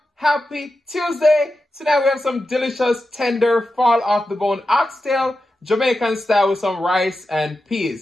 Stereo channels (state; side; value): normal; both; correlation 0.90